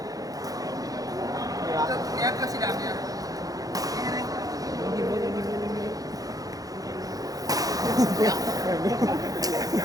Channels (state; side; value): late; left; 0.17 ms